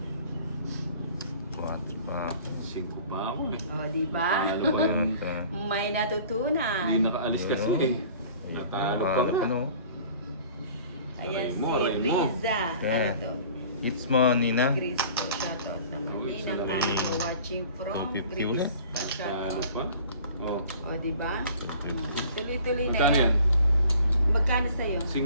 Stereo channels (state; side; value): inverted; both; correlation -0.48